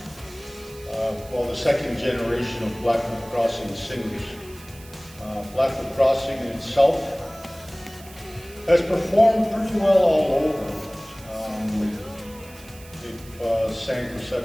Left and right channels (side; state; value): right; noise; hiss, 21 dB below the sound